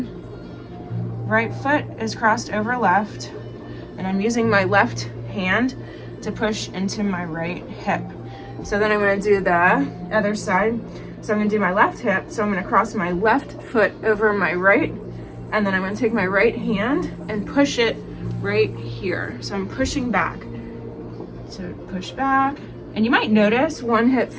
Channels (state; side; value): identical; both; correlation 1.00